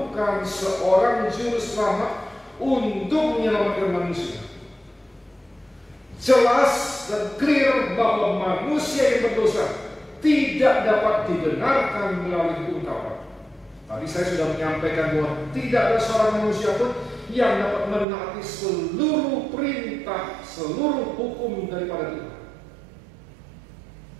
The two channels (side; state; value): left; drops out; at 18.1 s